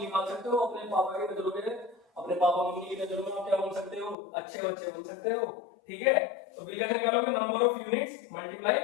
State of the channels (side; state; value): right; drops out; at 4.2 s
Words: सकते हो, अपने पापा की नजरों में, अपने पापा मम्मी की नजरों में आप क्या बन सकते हो, अच्छे बच्चे बन सकते हो, ठीक है। तो बिल कैसे निकालोगे, number of units